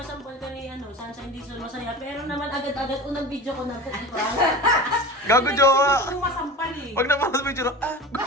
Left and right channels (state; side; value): normal; both; correlation 0.32